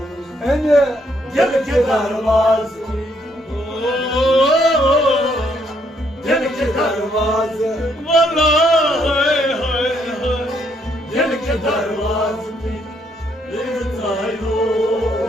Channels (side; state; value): both; normal; correlation 0.71